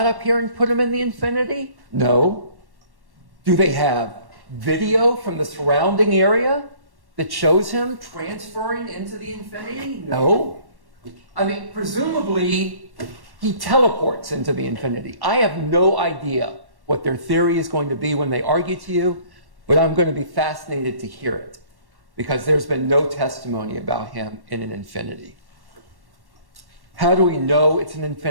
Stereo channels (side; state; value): left; late; 1.1 ms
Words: up here and put him in the Infiniti? No. Do they have video from the surrounding area that shows him transferring into the Infiniti? No. I mean, presumably, he teleports into the Infiniti. I have no idea what their theory is going to be when they argue to you, but I'm going to be fascinated to hear it because there's been no testimony about him in an Infiniti. How do we know it's an